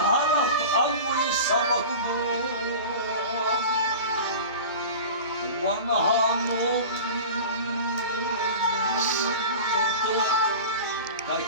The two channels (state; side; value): inverted; both; correlation -0.34